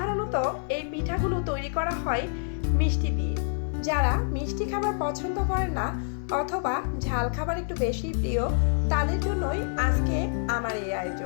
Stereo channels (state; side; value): silent; right; digital silence